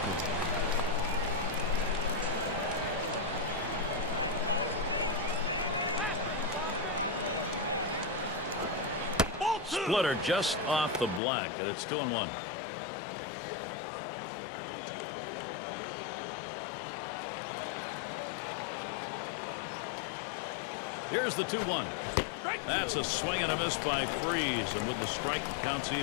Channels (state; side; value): drops out; right; at 11.2 s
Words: Splitter just off the black, and it's 2-1. Here's the 2-1. That's a swing and a miss by Freese, and with the strike, counts